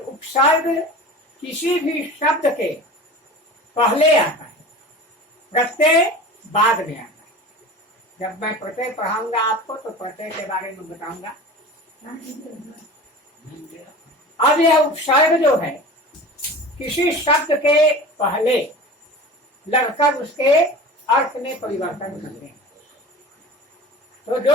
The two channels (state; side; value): normal; both; correlation 0.36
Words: किसी भी शब्द के पहले आता है, प्रत्यय बाद में आता है। जब मैं प्रत्यय पढ़ाऊंगा आपको तो प्रत्यय के बारे में बताऊंगा। अब यह उपसर्ग जो है किसी शब्द के पहले लगकर उसके अर्थ में परिवर्तन कर दें। तो